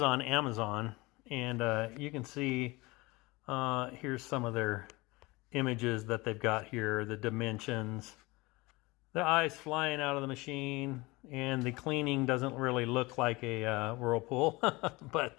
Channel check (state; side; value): quieter; right; 23.1 dB